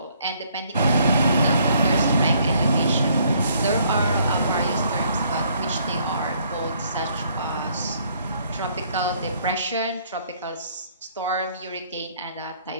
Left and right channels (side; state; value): both; inverted; correlation -0.65